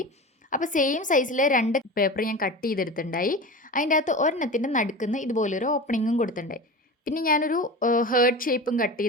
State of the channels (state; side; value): normal; both; correlation 0.30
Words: അപ്പോൾ സെയിം സൈസിൽ 2 പേപ്പർ ഞാൻ കട്ട് ചെയ്തെടുത്തിട്ടുണ്ടായി. അതിൻ്റെ അകത്ത് ഒരെണ്ണത്തിൻ്റെ നടുക്കുന്ന് ഇതുപോലൊരു ഓപ്പണിങ്ങും കൊടുത്തിട്ടുണ്ടായി. പിന്നെ ഞാനൊരു ഹേർട്ട് ഷേപ്പും കട്ട്